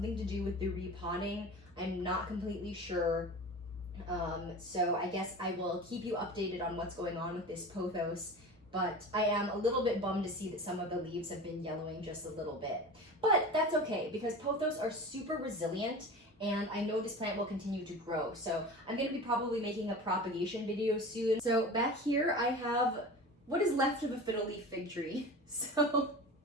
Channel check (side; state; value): both; normal; correlation 0.34